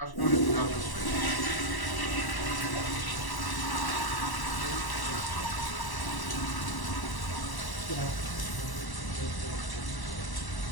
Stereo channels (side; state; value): right; late; 1.0 ms